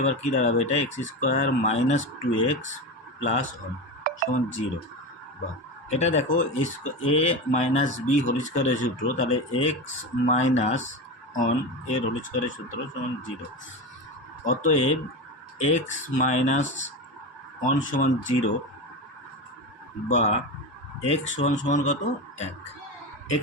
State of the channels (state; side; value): normal; both; correlation 0.22